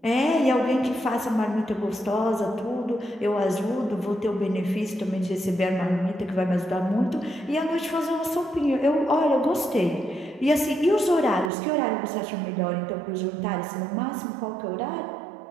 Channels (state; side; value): drops out; left; at 11.5 s